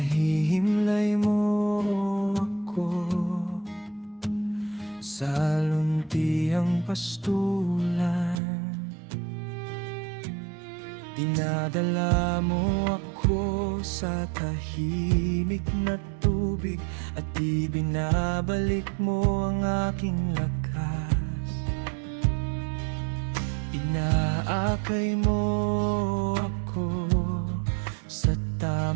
mo ako sa luntiang pastulan. Dinadala mo ako sa tahimik na tubig at ibinabalik mo ang aking lakas. Inaakay mo ako sa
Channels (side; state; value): left; drops out; at 8.4 s